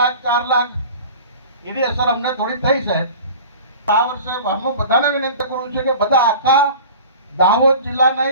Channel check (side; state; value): both; inverted; correlation -0.40